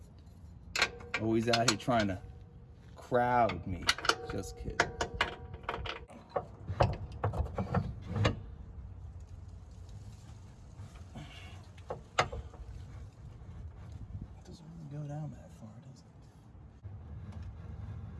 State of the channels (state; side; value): identical; both; correlation 1.00